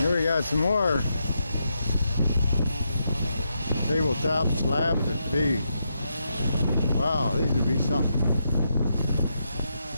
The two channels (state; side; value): inverted; both; correlation -0.83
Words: we got some more tabletop slabs that'd be, wow, these would be something.